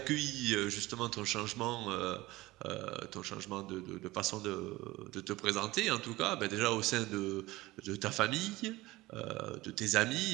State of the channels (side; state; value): left; quieter; 19.2 dB